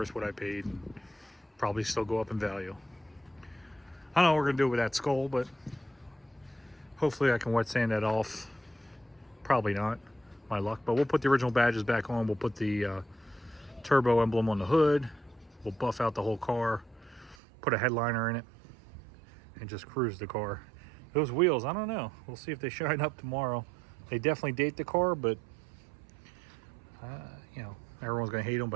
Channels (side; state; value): left; drops out; at 17.4 s